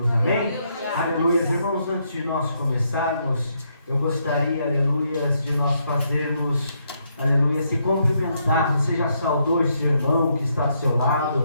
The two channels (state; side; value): inverted; both; correlation -0.76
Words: Amém? Aleluias. Irmãos, antes de nós começarmos, eu gostaria, aleluias, de nós fazermos, aleluia, se cumprimentar. Você já saudou esse irmão que está do seu lado?